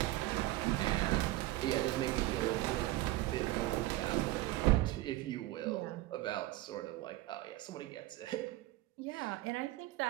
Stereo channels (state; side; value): quieter; left; 17.3 dB